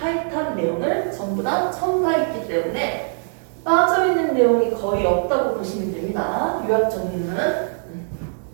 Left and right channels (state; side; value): silent; left; digital silence